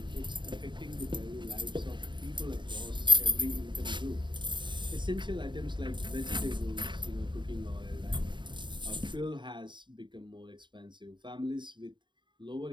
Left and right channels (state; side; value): late; left; 0.23 ms